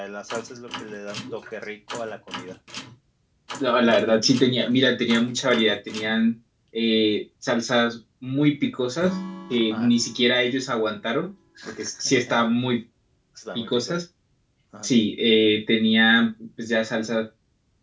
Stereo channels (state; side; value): identical; both; correlation 1.00